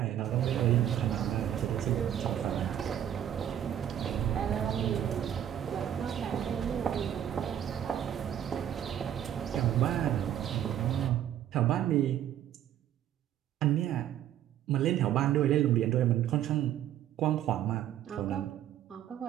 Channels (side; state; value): left; quieter; 10.7 dB